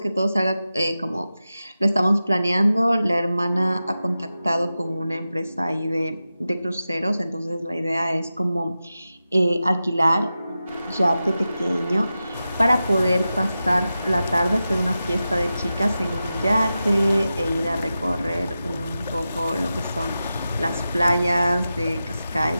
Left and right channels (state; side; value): inverted; both; correlation -0.92